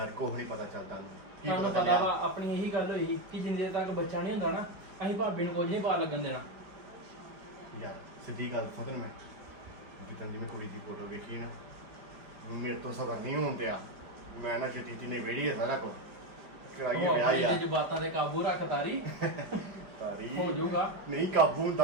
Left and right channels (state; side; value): late; left; 5.0 ms